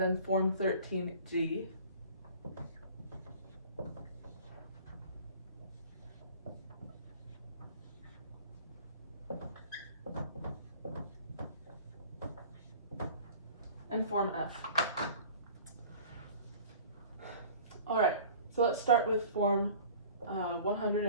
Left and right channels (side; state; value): both; inverted; correlation -0.45